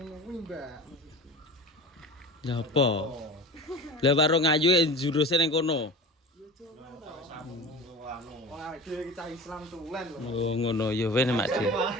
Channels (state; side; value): normal; both; correlation 0.34